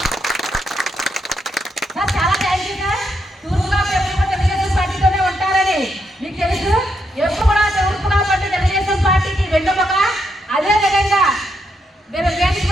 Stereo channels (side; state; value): both; normal; correlation 0.79